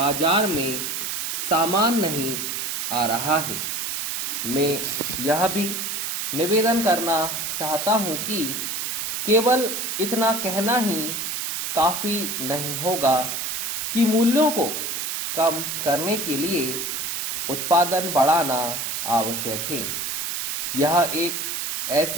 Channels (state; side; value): noise; right; hiss, 2 dB below the sound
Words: में सामान नहीं आ रहा है। मैं यह भी निवेदन करना चाहता हूं कि केवल इतना कहना ही काफी नहीं होगा कि मूल्यों को कम करने के लिए उत्पादन बढ़ाना आवश्यक है। यह एक